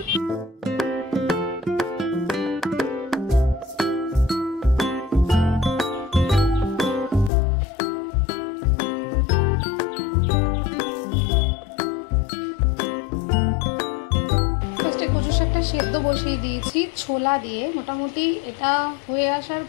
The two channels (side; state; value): right; drops out; at 7.3 s